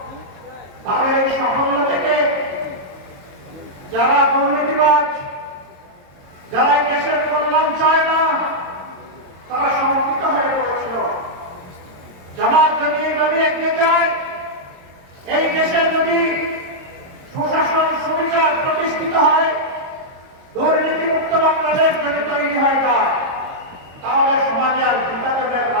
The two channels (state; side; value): late; left; 22 ms